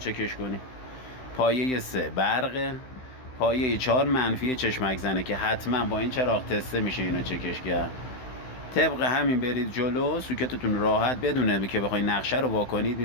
کنی. پایه سه برقه. پایه چهار منفی چشمک زنه که حتما با این چراغ تسته میشه اینو چکش کرد. طبق همین برید جلو، سوکتتون راحت بدونه که بخواید نقشه رو واکنید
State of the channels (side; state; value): right; late; 16 ms